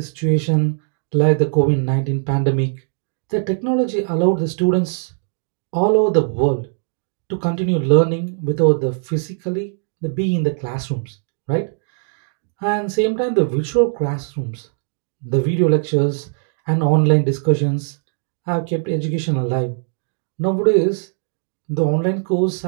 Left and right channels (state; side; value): silent; left; digital silence